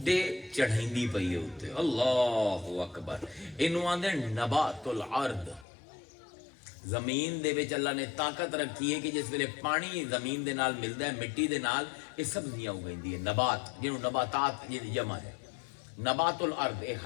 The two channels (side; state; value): right; drops out; at 5.7 s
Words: چڑھائندی پئی ہے اوتے. اللہ اکبر. انہوں آندے نبات الارض, زمین دے وچ اللہ نے طاقت رکھی ہے کہ جس ویلے پانی زمین دے نال ملدا ہے, مٹی دے نال, یہ سبزیاں اگائندی ہے. نبات جنوں نباتات یہ جمع ہے, نبات الارض, اے